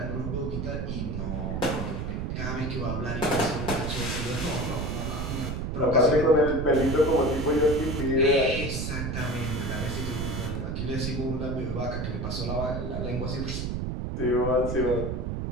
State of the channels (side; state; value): right; noise; rumble, 2 dB below the sound